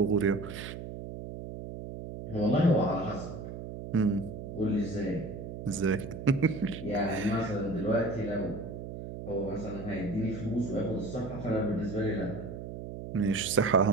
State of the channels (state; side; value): noise; right; hum, 9 dB below the sound